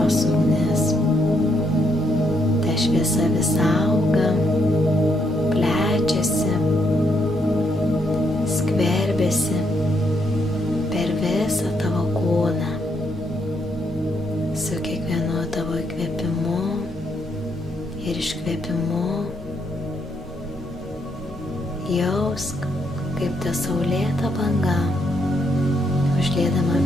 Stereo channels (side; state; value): both; normal; correlation 0.75